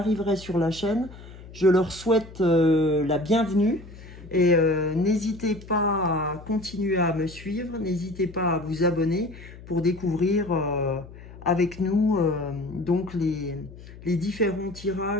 sur la chaîne, je leur souhaite la bienvenue. Et n'hésitez pas à continuer à me suivre, n'hésitez pas à vous abonner pour découvrir avec nous donc les différents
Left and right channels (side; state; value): left; noise; hum, 17 dB below the sound